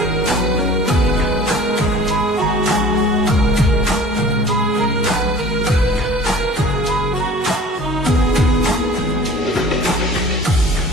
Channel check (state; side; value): normal; both; correlation 0.46